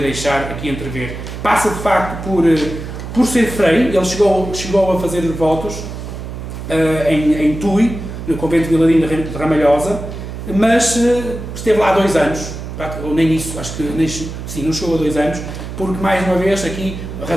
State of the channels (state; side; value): noise; right; hum, 9 dB below the sound